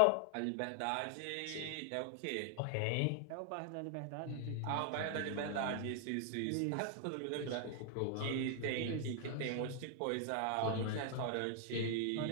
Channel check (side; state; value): both; different; correlation 0.00